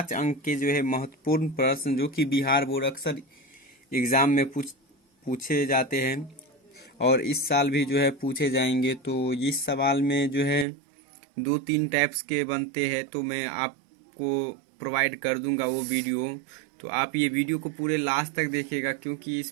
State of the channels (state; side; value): drops out; left; at 10.7 s